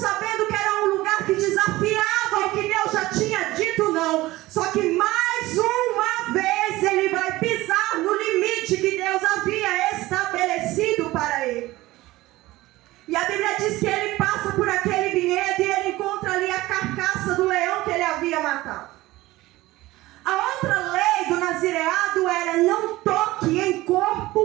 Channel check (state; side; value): quieter; left; 18.3 dB